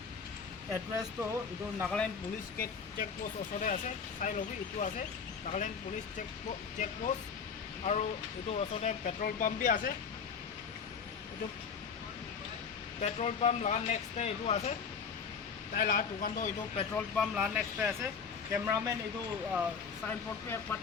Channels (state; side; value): quieter; right; 6.1 dB